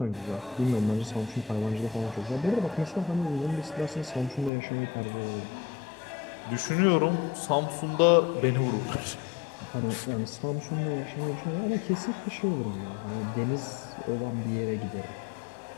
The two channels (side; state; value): right; drops out; at 4.5 s